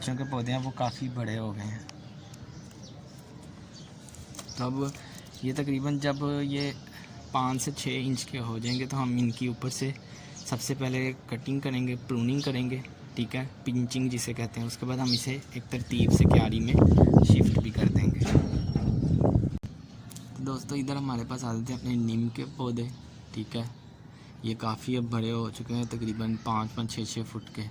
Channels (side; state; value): both; identical; correlation 1.00